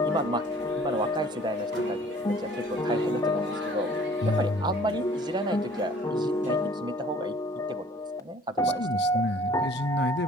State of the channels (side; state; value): both; normal; correlation 0.53